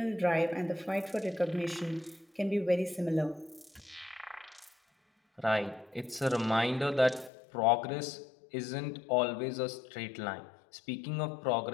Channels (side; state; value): right; drops out; at 7.3 s